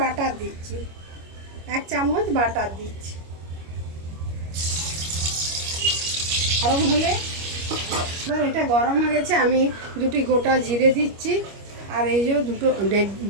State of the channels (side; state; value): left; late; 25 ms